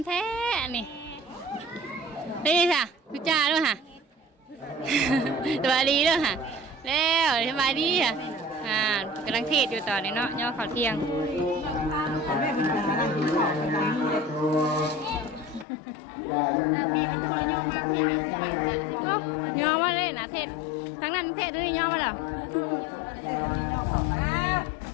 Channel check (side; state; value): right; drops out; at 15.7 s